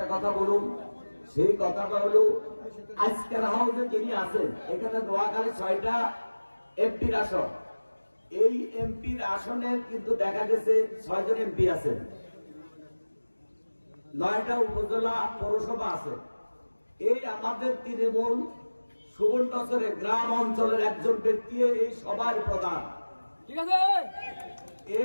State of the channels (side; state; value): both; inverted; correlation -1.00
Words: কথা বলুন। সেই কথাটা হলো, আজকের হাউসে যিনি আছেন, এখানে নোয়াখালী 6টা এমপির আসন। এই এমপির আসনে কিন্তু দেখা গেছে 6 জন এমপি আছেন, 9টা উপজেলা পৌরসভা আছে। এই আমাদের তৃণমূল সুবর্ণচরের গ্রাম অঞ্চলের একজন ব্যক্তি এই সভার প্রধান, ঠিক আছে।